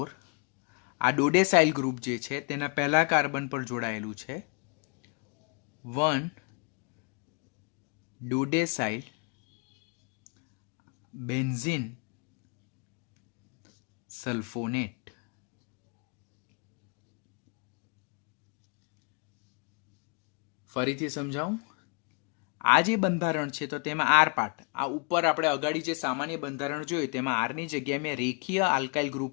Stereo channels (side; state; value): right; quieter; 36.1 dB